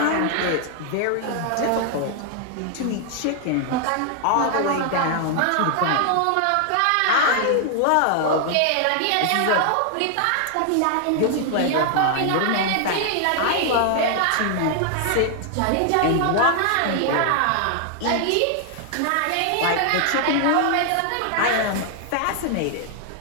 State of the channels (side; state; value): both; different; correlation 0.00